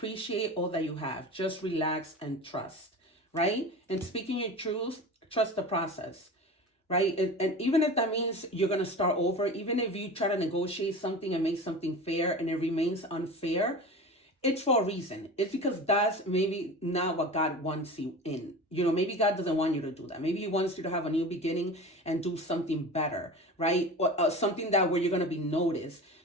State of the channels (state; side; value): normal; both; correlation 0.33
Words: all that you have. Just relax and trust, right? And speaking your truth, trust the process, right? And even if that means you're going to start over, even if you try to negotiate something and make something fair and it remains unfair, it's for a reason. It's because that's maybe not what God wants you in. Maybe God doesn't want you to do that. Maybe He wants you to have a new beginning and do something better, right? Or something where you're going to be noticed,